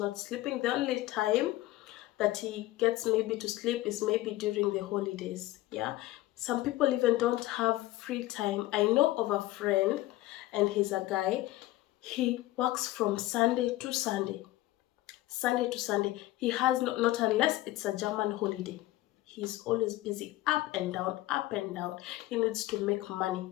sleeping. The only time that he gets maybe to sleep is maybe during the holidays, yeah. Some people even don't have free time. I know of a friend, and he's a guy, he works from Sunday to Sunday, Sunday to Sunday. He has not unless it's a German holiday. He's always busy, up and down, up and down. He needs to make money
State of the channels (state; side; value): quieter; right; 17.0 dB